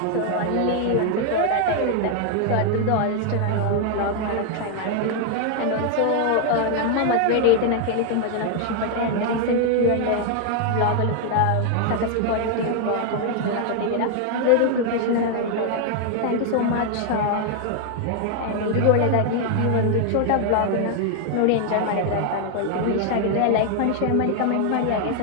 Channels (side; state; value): both; different; correlation 0.00